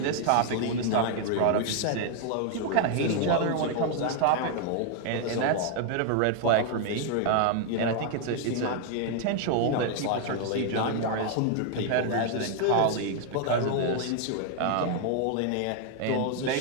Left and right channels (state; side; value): different; both; correlation 0.00